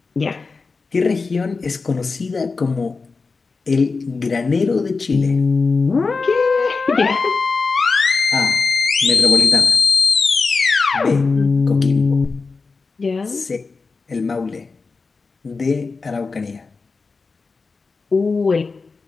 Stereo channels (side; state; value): right; quieter; 4.3 dB